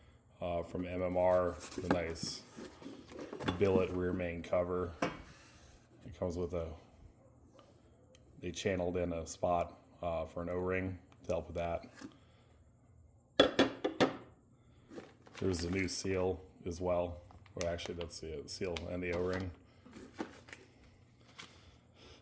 from MMR, the nice billet rear main cover. It comes with they channeled in a spot for an O-ring to help with that. There's a new seal as well. Well, actually, that's the seal and the O-ring.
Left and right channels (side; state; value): both; identical; correlation 1.00